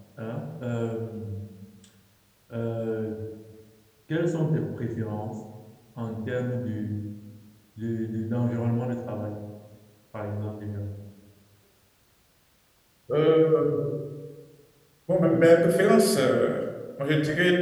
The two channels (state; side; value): identical; both; correlation 1.00